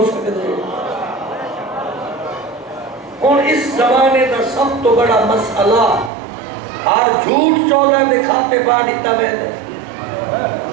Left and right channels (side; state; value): left; drops out; at 6.1 s